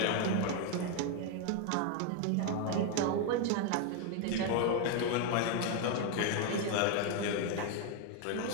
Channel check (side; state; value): both; different; correlation 0.01